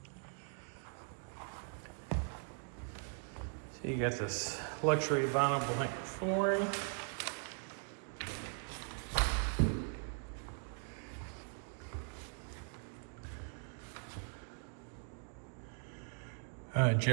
you got this luxury vinyl blank flooring.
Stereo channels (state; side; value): silent; left; 51 dB below the other